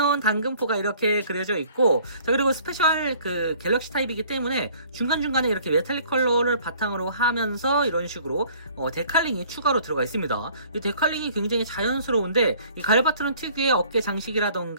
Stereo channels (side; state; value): both; inverted; correlation -0.55